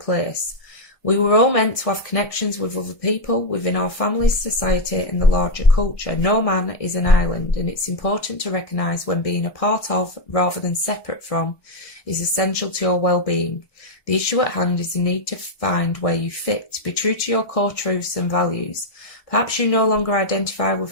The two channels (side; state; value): right; late; 1.2 ms